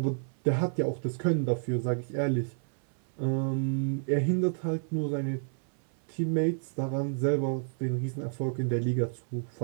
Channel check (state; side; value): silent; left; 58 dB below the other